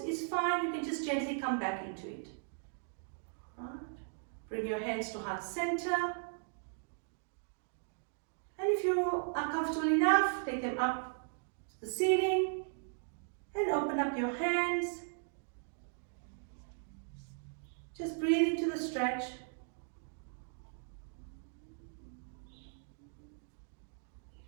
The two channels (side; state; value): left; silent; digital silence